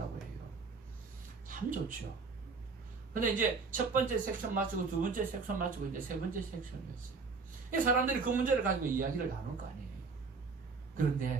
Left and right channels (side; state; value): left; quieter; 4.6 dB